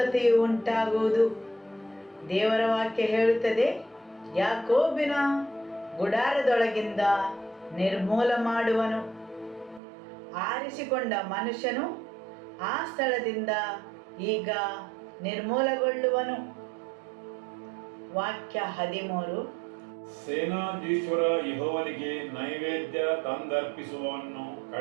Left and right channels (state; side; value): drops out; left; at 9.8 s